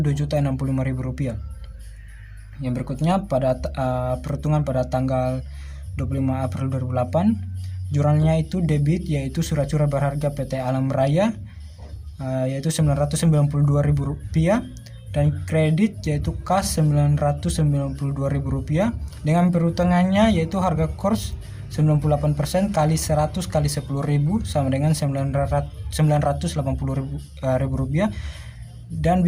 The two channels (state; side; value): identical; both; correlation 1.00